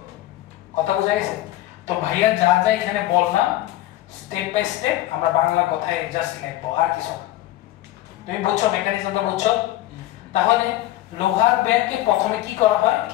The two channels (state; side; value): quieter; right; 15.5 dB